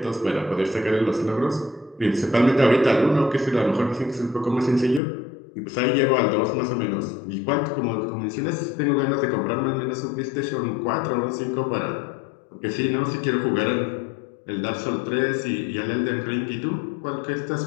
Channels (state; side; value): drops out; right; at 5.0 s